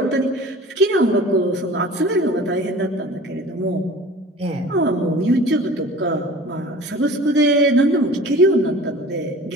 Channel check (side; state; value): both; normal; correlation 0.42